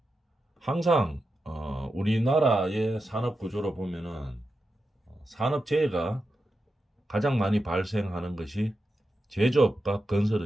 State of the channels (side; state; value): both; normal; correlation 0.89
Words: 항상 우리나라의 산업 구조로 보면은 산업재해가 가장 많이 발생하는 것이 제조업과